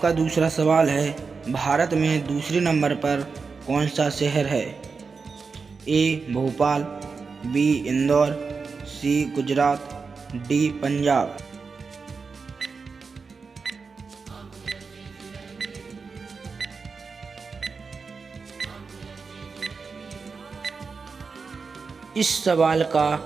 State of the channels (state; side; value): quieter; left; 4.9 dB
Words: दूसरा सवाल है, भारत में दूसरे नंबर पर कौन सा शहर है? ए भोपाल, बी इंदौर, सी गुजरात, डी पंजाब। इस सवाल